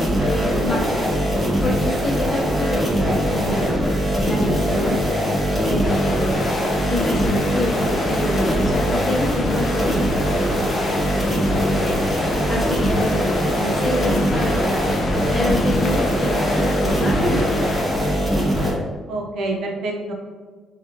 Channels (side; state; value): both; normal; correlation 0.78